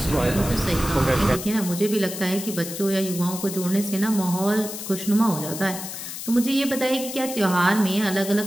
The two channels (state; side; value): noise; left; hiss, 8 dB below the sound